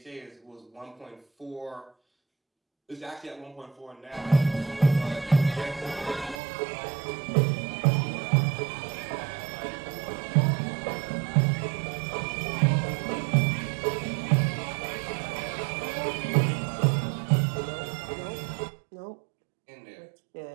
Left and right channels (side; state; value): left; drops out; at 6.4 s